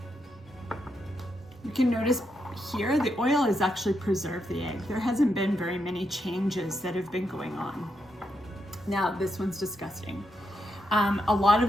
You can notice here, the oil has actually preserved the egg. There hasn't been very many changes that have been going on. Now, this one's disgusting. A lot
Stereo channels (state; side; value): normal; both; correlation 0.82